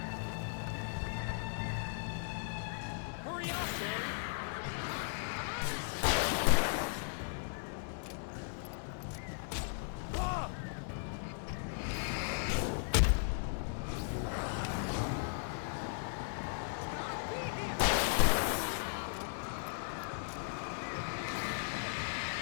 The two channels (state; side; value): silent; right; digital silence